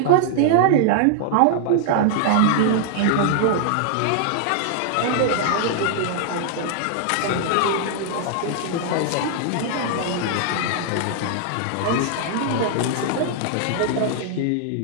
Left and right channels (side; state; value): both; different; correlation -0.01